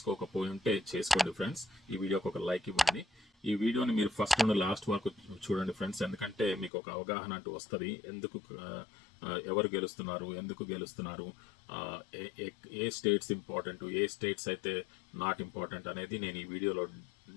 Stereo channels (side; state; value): right; drops out; at 6.7 s